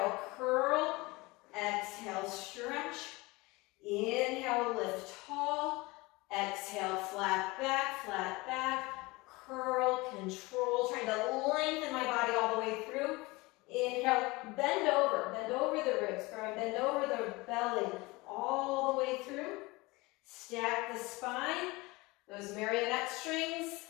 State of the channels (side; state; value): right; quieter; 23.1 dB